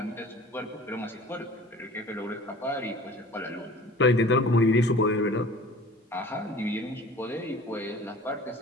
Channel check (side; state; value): both; normal; correlation 0.45